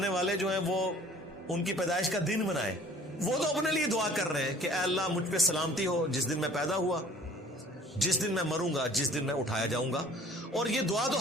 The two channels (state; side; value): normal; both; correlation 0.51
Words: والے جو ہیں وہ ان کی پیدائش کا دن منائے؟ وہ تو اپنے لیے دعا کر رہے ہیں کہ اے اللہ مجھ پہ سلامتی ہو جس دن میں پیدا ہوا، جس دن میں مروں گا، جس دن میں اٹھایا جاؤں گا. اور یہ دعا تو